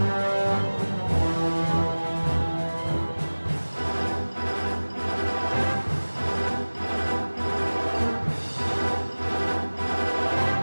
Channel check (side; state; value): both; inverted; correlation -1.00